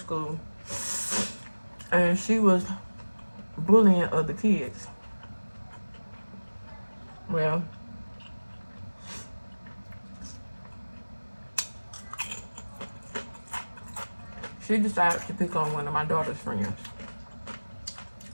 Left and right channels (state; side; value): inverted; both; correlation -1.00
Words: and she was bullying other kids. Well, she decided to pick on one of my daughter's friends,